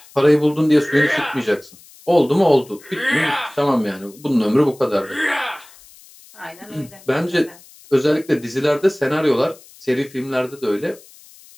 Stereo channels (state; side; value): noise; left; hiss, 24 dB below the sound